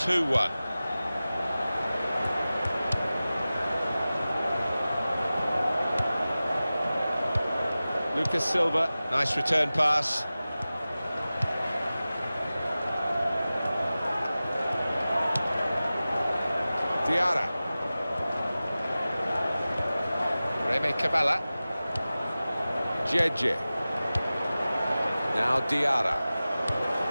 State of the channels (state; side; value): inverted; both; correlation -0.96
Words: Lucas Silva, nice return pass. Diarra. Remy Cabella. Jeje. Now Diarra.